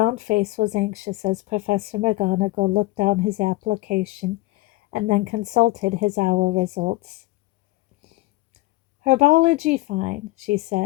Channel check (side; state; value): right; quieter; 19.7 dB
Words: face was anxious as Professor McGonagall looked down his application and then consulted his OWL results. "Herbology fine," she